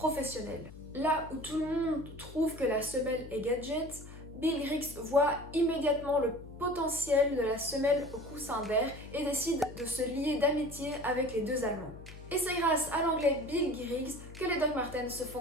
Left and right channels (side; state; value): left; noise; hum, 15 dB below the sound